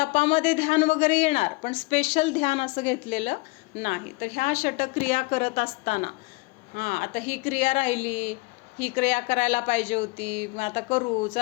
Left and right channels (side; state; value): right; quieter; 25.2 dB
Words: ध्यान वगैरे येणार, पण स्पेशल ध्यान असं घेतलेलं नाही. तर ह्या षटक्रिया करत असताना आता ही क्रिया राहिली, ही क्रिया करायला पाहिजे होती, मग आता करू